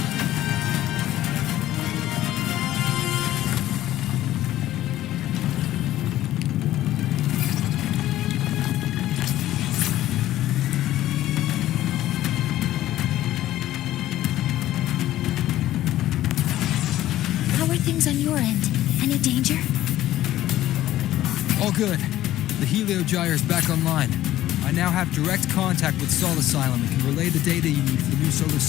On your end, any danger? All good. The Heliogyre's back online. I now have direct contact with Sol Asylum and can relay the data you need for the new solar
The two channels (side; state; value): right; quieter; 14.0 dB